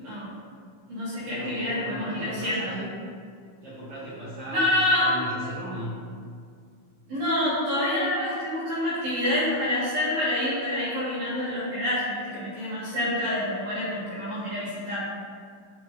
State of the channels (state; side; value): late; left; 15 ms